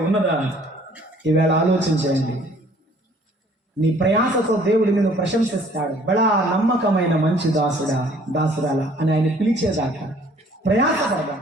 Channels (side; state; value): both; normal; correlation 0.57